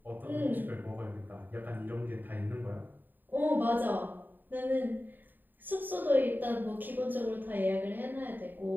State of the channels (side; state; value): left; late; 0.090 ms